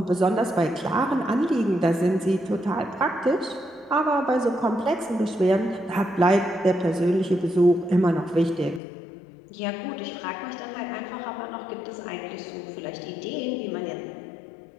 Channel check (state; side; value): drops out; right; at 8.8 s